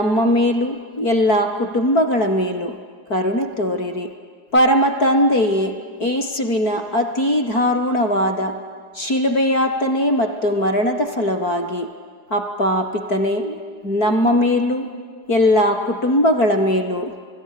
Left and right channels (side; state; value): right; late; 4.5 ms